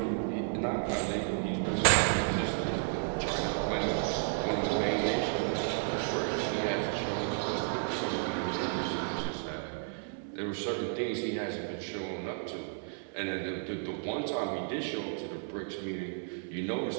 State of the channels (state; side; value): silent; left; digital silence